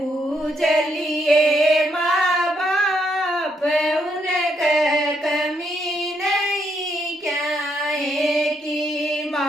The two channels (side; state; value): both; normal; correlation 0.76